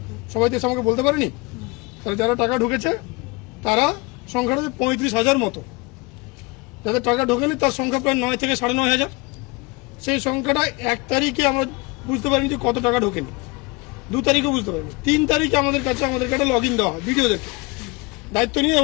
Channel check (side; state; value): right; quieter; 25.7 dB